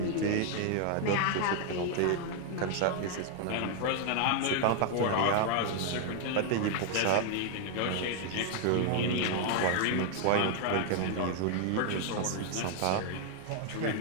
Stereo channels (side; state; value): both; different; correlation 0.00